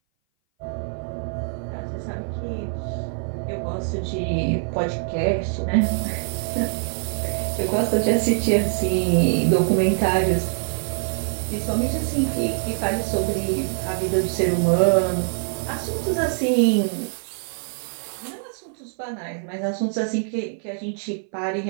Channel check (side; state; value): left; silent; 58 dB below the other